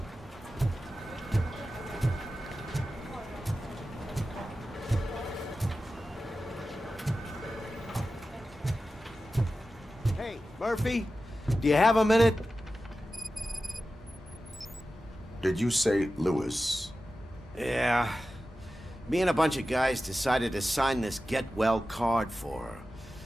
Hey, Murphy, do you have a minute? Did you say Lewis? Yeah. Me and a bunch of guys decided to sign this get well card for her.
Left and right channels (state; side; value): normal; both; correlation 0.94